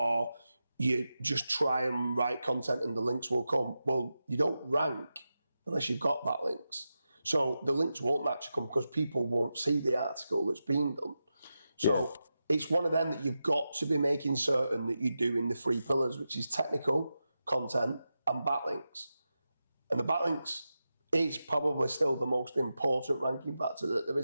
you just try and write content and the links will come. Well, you don't rank unless you've got backlinks. So the links won't naturally come because people won't see the article that's being done. So it's one of them that you've got to be making certain that you do in the 3 pillars, which is technical, content, and backlinks. And the backlinks is probably still the most important ranking factor that there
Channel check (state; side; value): inverted; both; correlation -0.90